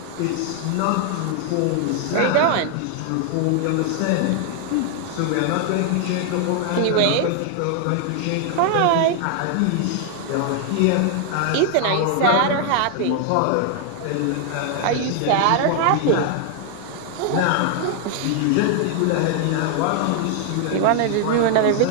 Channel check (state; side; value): different; both; correlation 0.00